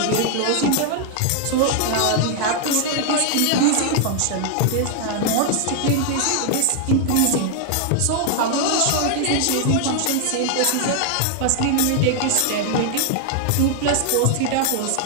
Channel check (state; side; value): different; both; correlation 0.00